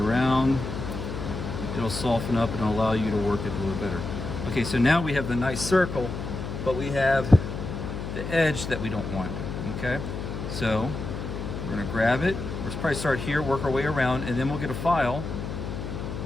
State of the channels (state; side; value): noise; left; hum, 6 dB below the sound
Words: It'll soften up and allow you to work it a little better. Okay, so now we have the nice circle, but we have the edge that we don't want, okay? So we're going to grab it. We'll probably start here, work our way around, and then we'll get a file,